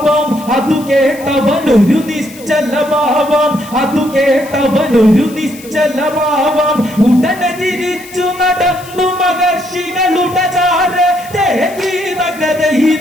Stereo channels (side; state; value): left; noise; hiss, 19 dB below the sound